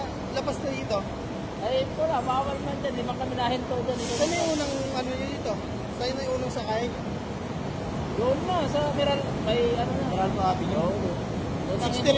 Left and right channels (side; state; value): both; identical; correlation 1.00